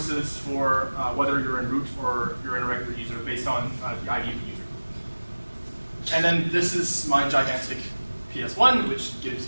for whether you're in root or you're in a regular user based on the ID of the user. And then this is my gigantic PS1, which gives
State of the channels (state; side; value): inverted; both; correlation -1.00